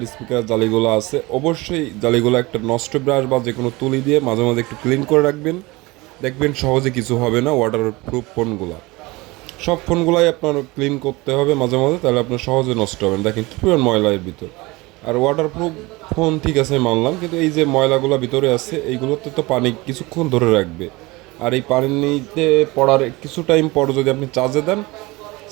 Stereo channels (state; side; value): quieter; left; 22.7 dB